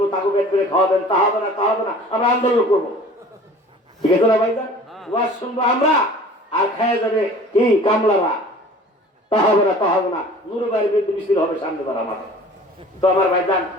তাকে পেট করে খাওয়াবেন, তা হবে না, তা হবে না, আমরা আন্দোলন করবো। ঠিক আছে না ভাইজান? ওয়াজ শুনবো আমরা, আর খাইয়া যাবে কি কামলারা, তা হবে না, তা হবে না। নুরু ভাইয়ের বিরুদ্ধে মিছিল হবে সামনে বার আমার। তো আমার ভাইজান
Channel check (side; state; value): both; normal; correlation 0.46